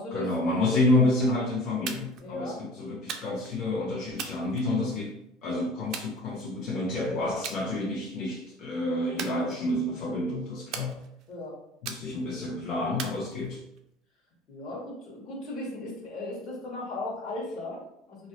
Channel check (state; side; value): normal; both; correlation 0.44